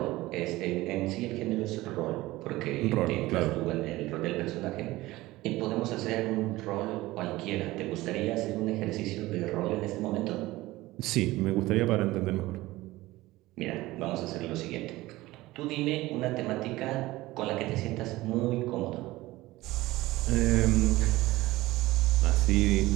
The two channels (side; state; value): left; quieter; 18.5 dB